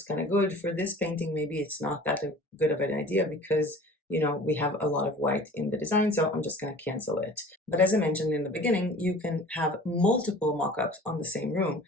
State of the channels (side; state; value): both; normal; correlation 0.45